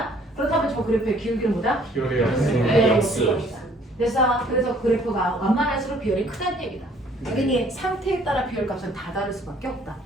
그렇다면 저 그래프의 기울기는 뭐다? 기울이요. 됐어. 그래서 그래프가 완만할수록 비율이 크다는 얘기다. 그러니 상태에 따라 비율값은 다 다를 수밖에 없다.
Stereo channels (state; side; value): normal; both; correlation 0.59